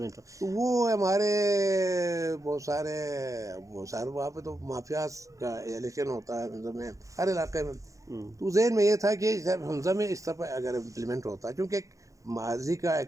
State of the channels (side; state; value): left; late; 0.16 ms